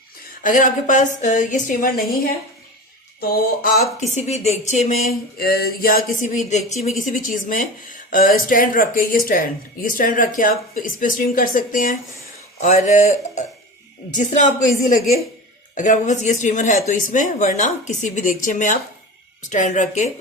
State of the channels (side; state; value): both; normal; correlation 0.31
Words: अगर आपके पास ये स्टीमर नहीं है तो आप किसी भी देगचे में या किसी भी देगची में किसी भी चीज़ में स्टैंड रख के ये स्टैंड रख के आप इस पे स्टीम कर सकते हैं। और जिस तरह आपको इजी लगे, अगर आपके पास ये स्टीमर है तो इसमें, वरना किसी भी देगचे में आप स्टैंड रख के